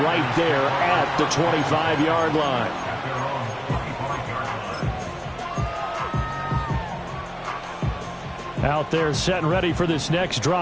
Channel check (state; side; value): identical; both; correlation 1.00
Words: right there at the 25-yard line. Out there set and ready for this next